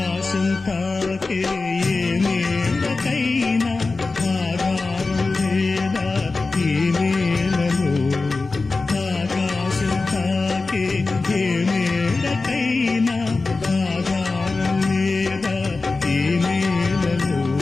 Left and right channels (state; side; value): quieter; right; 3.7 dB